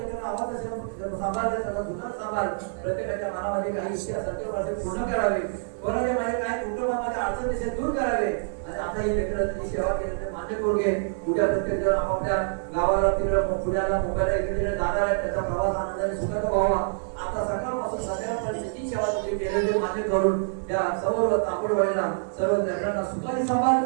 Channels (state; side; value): silent; left; 56 dB below the other